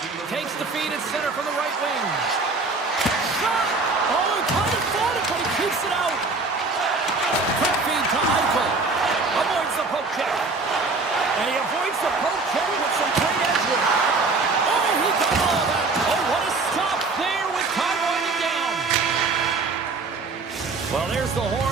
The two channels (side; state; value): left; quieter; 3.8 dB